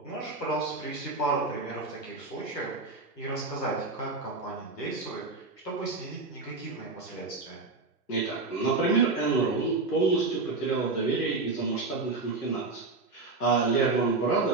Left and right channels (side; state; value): left; quieter; 3.7 dB